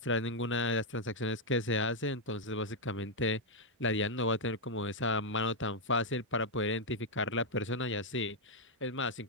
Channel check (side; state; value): both; normal; correlation -0.02